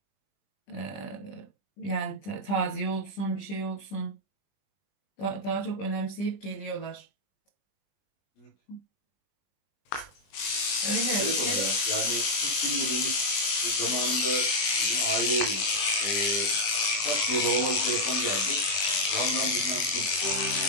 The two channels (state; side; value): late; right; 20 ms